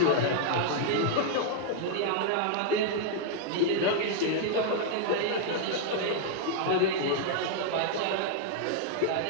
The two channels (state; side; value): different; both; correlation -0.01